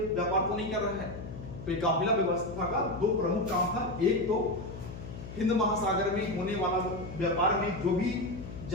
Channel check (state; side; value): noise; left; hum, 11 dB below the sound